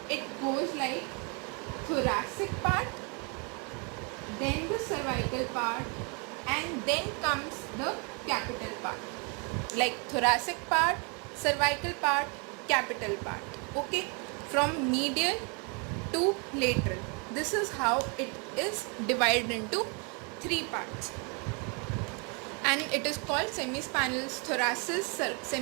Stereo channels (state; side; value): quieter; left; 34.4 dB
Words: it goes like thoracic part, then the cervical part, and then comes the capital part. Like thoracic part, cervical part, capital part. Okay, from medial to lateral. This is how it is divided into 3 parts. And it is called semispinalis thoracis,